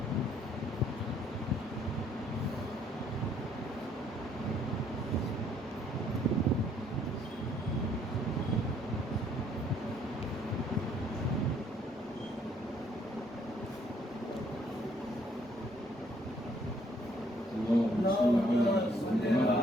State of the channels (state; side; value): normal; both; correlation 0.65